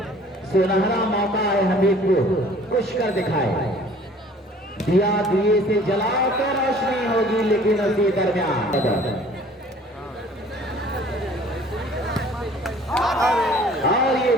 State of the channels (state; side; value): normal; both; correlation 0.52